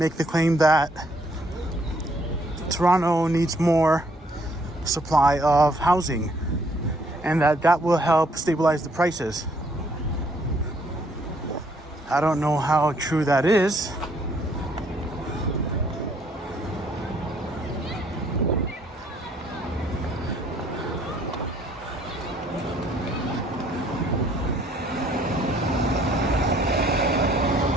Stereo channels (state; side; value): normal; both; correlation 0.65